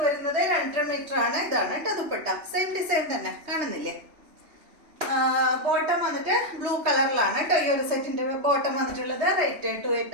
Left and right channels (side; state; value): left; late; 3.2 ms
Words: വരുന്നത് 2.5 മീറ്റർ ആണ്. ഇതാണ് കേട്ടോ ദുപ്പട്ട. സെയിം ഡിസൈൻ തന്നെ കാണുന്നില്ലേ. ബോട്ടം വന്നിട്ട് ബ്ലൂ കളറിലാണ് കേട്ടോ. ഈ ഒരു സെറ്റിന്റെ ബോട്ടം വന്നിട്ടുള്ളത്. റേറ്റ്